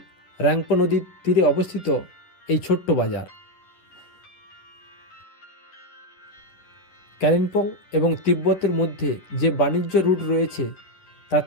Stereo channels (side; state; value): right; late; 11 ms